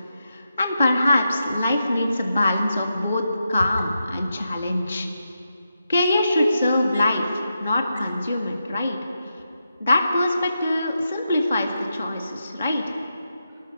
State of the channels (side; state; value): both; inverted; correlation -0.87